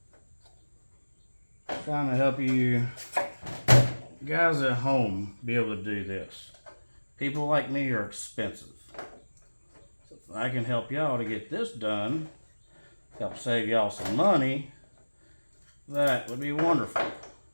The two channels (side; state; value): both; inverted; correlation -1.00